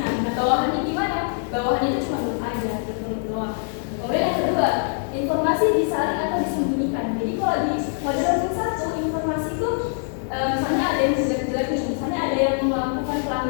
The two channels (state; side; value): silent; right; 60 dB below the other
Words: Nah, bawahannya gimana? Bawahannya itu cuma duduk aja, duduk doang. Kemudian yang kedua, informasi disaring atau disembunyikan. Jadi kalau di model learning 1, informasi itu misalnya ada yang jelek-jelek nih, misalnya ada yang melakukan